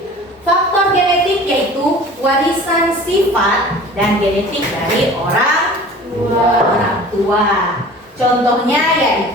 Faktor genetik yaitu warisan sifat dan genetik dari orang tua. Contohnya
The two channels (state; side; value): normal; both; correlation 0.43